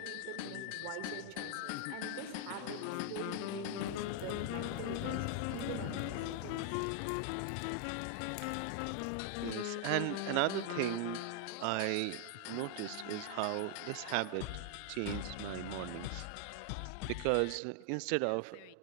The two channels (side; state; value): both; different; correlation 0.00